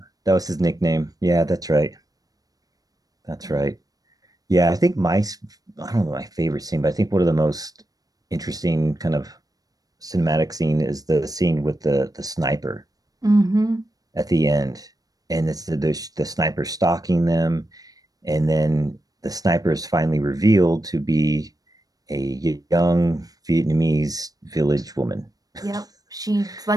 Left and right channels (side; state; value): left; late; 0.18 ms